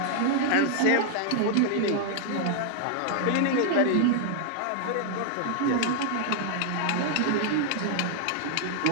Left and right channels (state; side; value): different; both; correlation 0.00